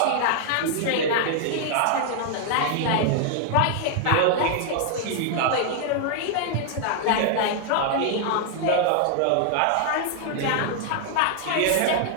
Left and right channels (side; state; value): both; different; correlation 0.00